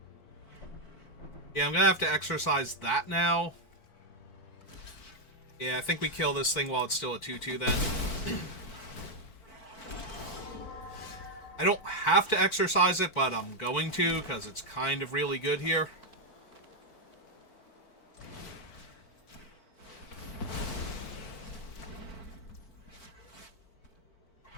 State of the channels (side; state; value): right; late; 4.4 ms